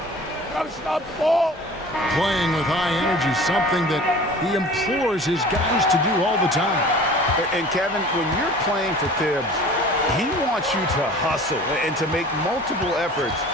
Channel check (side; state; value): both; normal; correlation 0.43